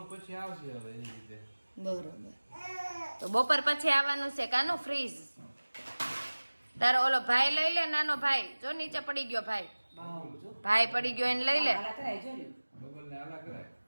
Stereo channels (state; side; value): inverted; both; correlation -1.00